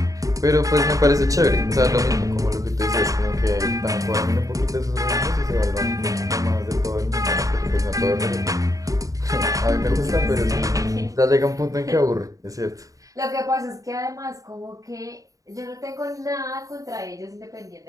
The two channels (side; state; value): left; late; 0.16 ms